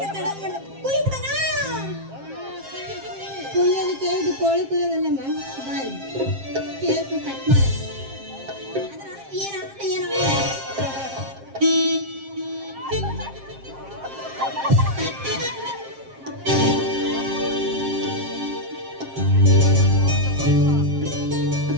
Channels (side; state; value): left; late; 7.5 ms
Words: ತಡ ಮಾಡ ಕುಯ್ಬಿಡಣ. ಕುಯ್ಯೋದಕ್ಕೆ ಇದು ಕೋಳಿ ಕುಯ್ಯೋದಲ್ಲಮ್ಮ, ಬಾರಿ ಕೇಕ್ ಕಟ್ ಮಾಡ.